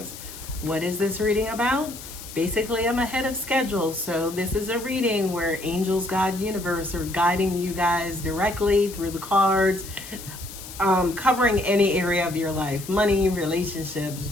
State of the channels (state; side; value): noise; left; hiss, 13 dB below the sound